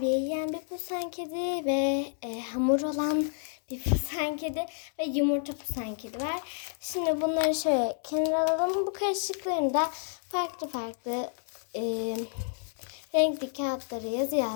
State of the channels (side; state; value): right; silent; 58 dB below the other